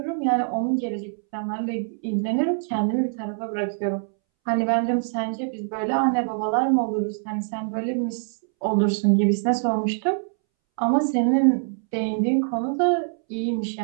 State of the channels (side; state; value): left; silent; 63 dB below the other